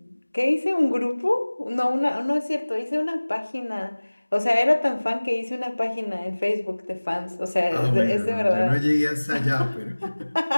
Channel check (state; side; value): inverted; both; correlation -1.00